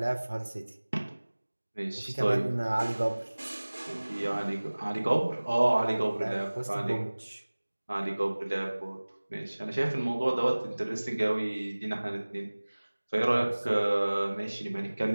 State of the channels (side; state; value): both; inverted; correlation -1.00